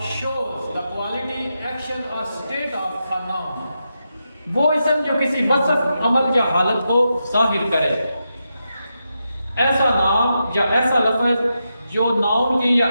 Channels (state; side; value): inverted; both; correlation -0.87